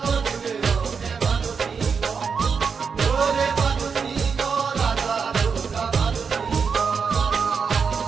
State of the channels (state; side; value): quieter; left; 5.8 dB